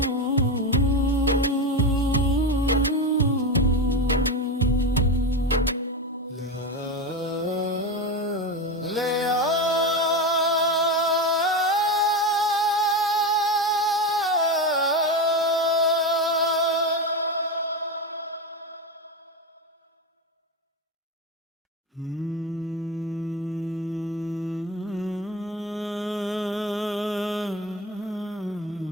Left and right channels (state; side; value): normal; both; correlation 0.18